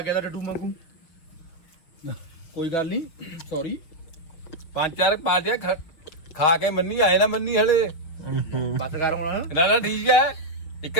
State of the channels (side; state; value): right; late; 6.4 ms